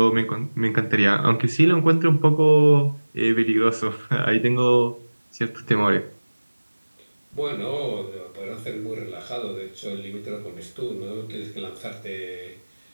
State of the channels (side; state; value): both; inverted; correlation -1.00